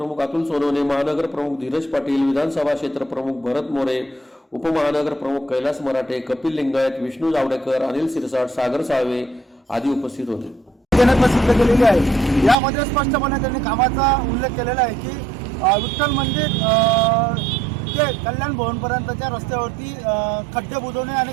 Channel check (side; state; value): left; drops out; at 12.6 s